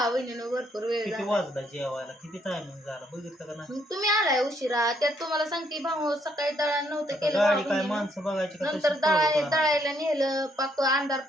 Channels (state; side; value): normal; both; correlation 0.71